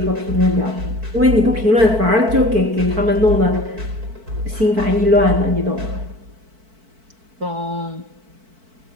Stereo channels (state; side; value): late; left; 4.5 ms